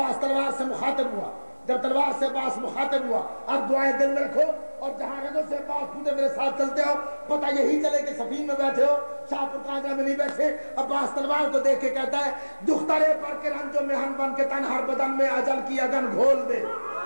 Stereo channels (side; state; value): both; inverted; correlation -1.00